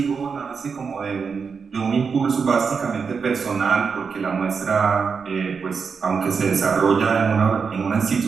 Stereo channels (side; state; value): left; quieter; 5.6 dB